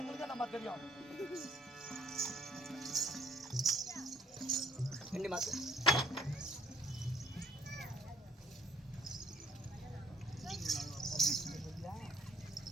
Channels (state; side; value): normal; both; correlation 0.64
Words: நம்ம தெரியும். ரெண்டு மாசம்